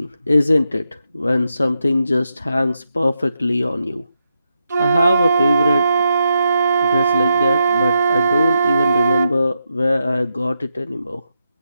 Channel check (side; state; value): both; inverted; correlation -0.85